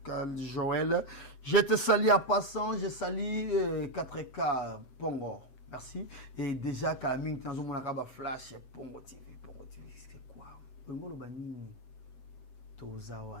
cas Joël. Je te salue à passant. Je salue 4K Pongo. Merci. Et déjà, Kalaming, tu as un flash Pongo TV. C'est quoi?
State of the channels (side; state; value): right; late; 8.0 ms